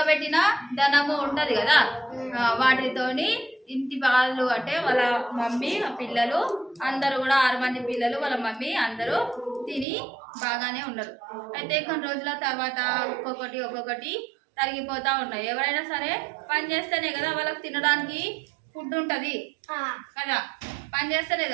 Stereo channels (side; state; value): left; drops out; at 9.9 s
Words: ధనము ఉంటది కదా, వాటితోని ఇంటి వాళ్ళు అంటే వాళ్ళ మమ్మీ, పిల్లలు అందరూ కూడా 6 మంది పిల్లలు, వాళ్ళ మమ్మీ అందరూ తిని బాగానే ఉన్నారు. అయితే కొన్ని రోజుల తర్వాత ఒక్కొక్కటి తరిగిపోతా ఉన్నాయి. ఎవరైనా సరే పని చేస్తేనే కదా వాళ్ళకి తినడానికి ఫుడ్ ఉంటది కదా, పని చేస్తేనే